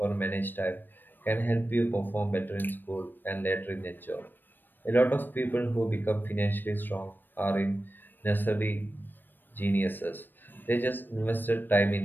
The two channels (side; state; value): right; late; 0.093 ms